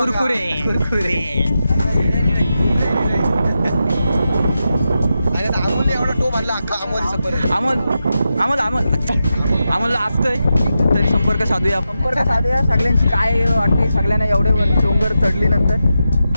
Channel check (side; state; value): both; inverted; correlation -0.89